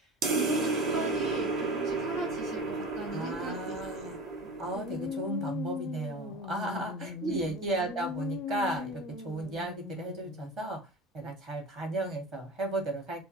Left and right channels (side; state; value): both; normal; correlation 0.34